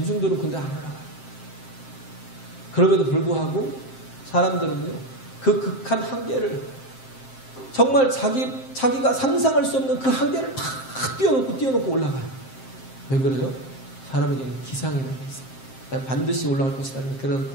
근데 안 올라가요. 그럼에도 불구하고 사람들은요, 그 극한 한계를 정말 자기가 상상할 수 없는 그 한계를 다 뛰어넘고 올라가요. 왜 그래요? 사람에게는 기상이라는 게 있어요. 반드시 올라갈 것이라는 그런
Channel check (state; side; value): late; right; 7.6 ms